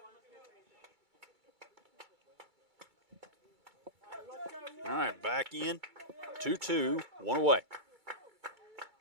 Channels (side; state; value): left; late; 2.3 ms